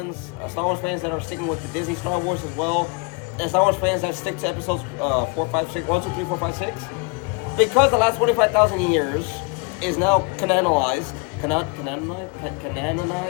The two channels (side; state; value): right; quieter; 30.0 dB